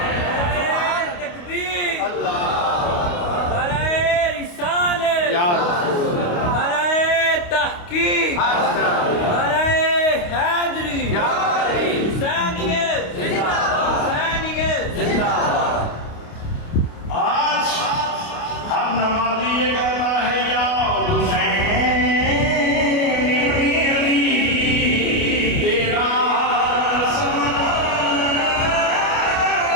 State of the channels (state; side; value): late; right; 29 ms